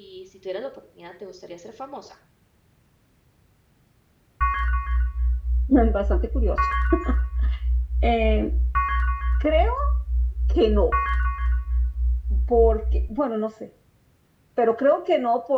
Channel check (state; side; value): identical; both; correlation 1.00